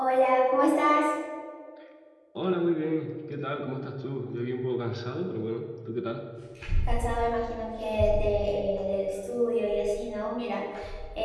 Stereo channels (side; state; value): both; identical; correlation 1.00